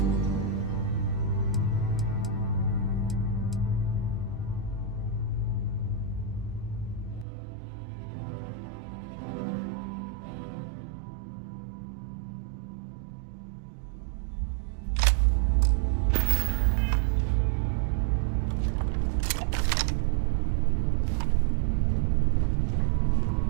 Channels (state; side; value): drops out; left; at 7.2 s